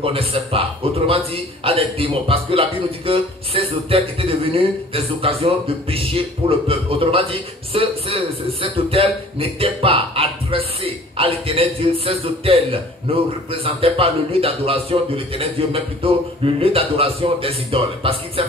pas. Autrement dit, à des démons. Parce que la Bible nous dit que ces autels étaient devenus des occasions de péché pour le peuple. Autrement dit, cet autel n'était pas adressé à l'éternel Dieu. Ces autels ne représentaient pas le lieu d'adoration de l'éternel Dieu, mais plutôt le lieu d'adoration des idoles. Parce qu'il s'est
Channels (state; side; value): normal; both; correlation 0.49